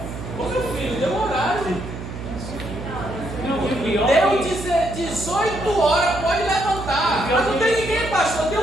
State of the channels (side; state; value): right; noise; hum, 9 dB below the sound